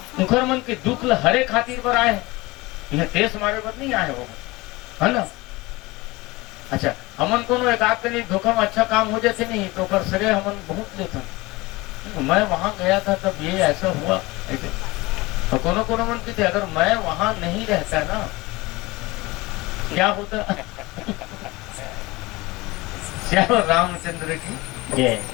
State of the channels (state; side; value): quieter; right; 21.9 dB